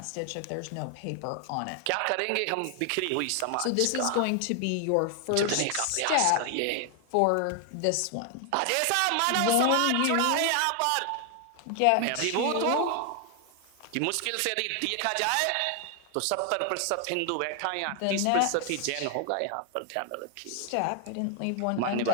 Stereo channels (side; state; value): both; different; correlation 0.00